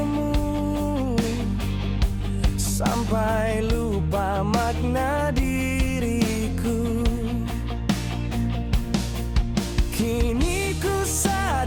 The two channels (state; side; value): identical; both; correlation 1.00